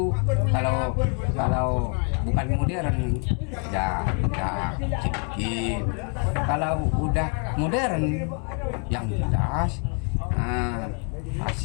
kalau bukan modern ya sedikit. Kalau udah modern yang jelas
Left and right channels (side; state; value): right; quieter; 39.9 dB